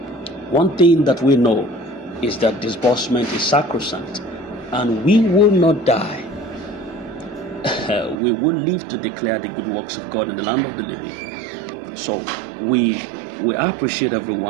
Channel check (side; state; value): left; drops out; at 8.2 s